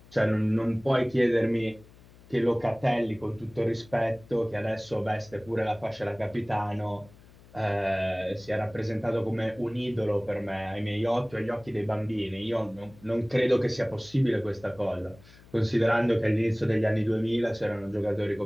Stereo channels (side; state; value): left; noise; hum, 24 dB below the sound